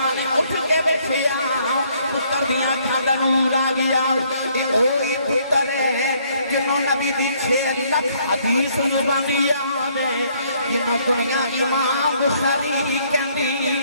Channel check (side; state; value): both; inverted; correlation -0.66